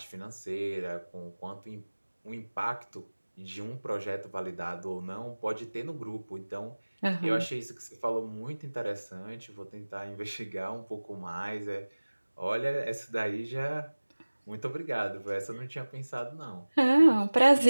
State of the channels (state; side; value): inverted; both; correlation -1.00